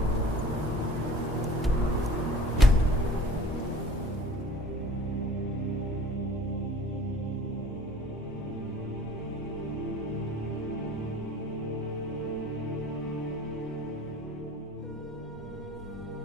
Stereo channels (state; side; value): normal; both; correlation 0.47